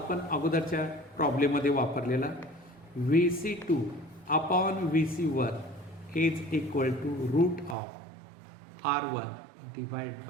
अगोदरच्या प्रॉब्लेममध्ये वापरलेला. VC2 upon VC1 is equal to root of R1 divide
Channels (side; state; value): left; drops out; at 7.8 s